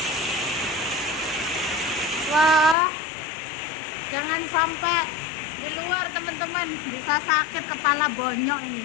Wah, jangan sampai di luar teman-teman, bisa sakit kepala bonyok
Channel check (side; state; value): right; drops out; at 2.8 s